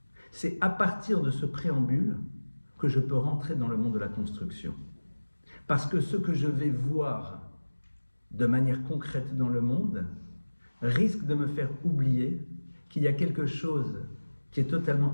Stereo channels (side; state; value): both; inverted; correlation -1.00